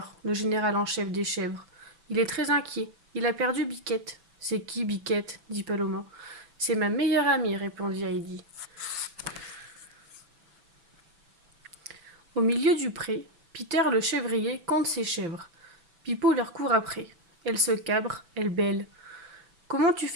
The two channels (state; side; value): late; left; 6.0 ms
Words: le général en chef des chèvres. Il est très inquiet. Il a perdu Biquette. C'est qui Biquette dit Paloma. C'est ma meilleure amie, répondit Heidi. Au milieu du pré, Peter le chèvrier compte ses chèvres. Pipo leur court après. Elle se cabre, elle bêle. Comment tu